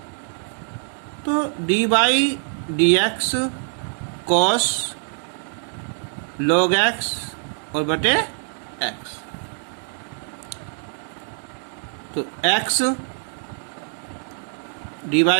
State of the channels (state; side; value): silent; left; 61 dB below the other